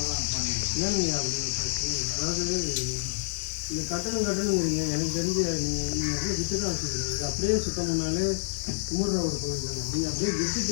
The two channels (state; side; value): silent; right; digital silence